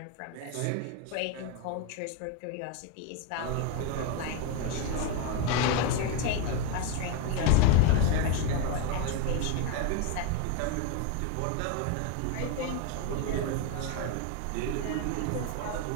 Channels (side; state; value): both; different; correlation 0.02